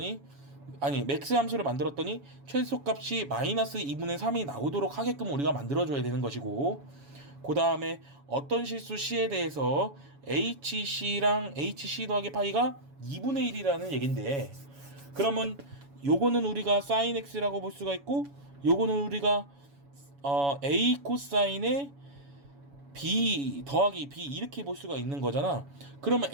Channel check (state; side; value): late; left; 7.1 ms